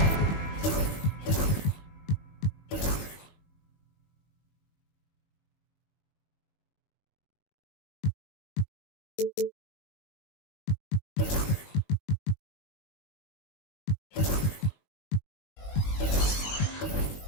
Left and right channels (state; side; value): late; right; 20 ms